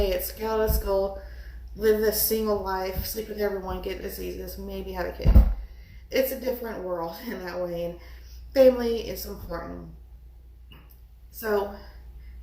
it's get out of school, live this single life, sleep with everyone, get diseases, maybe have a kid. It's a different world in that way, and family is important. So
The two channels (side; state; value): both; identical; correlation 1.00